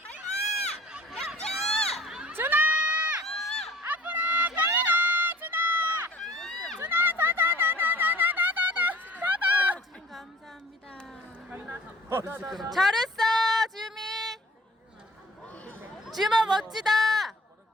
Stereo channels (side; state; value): both; normal; correlation 0.49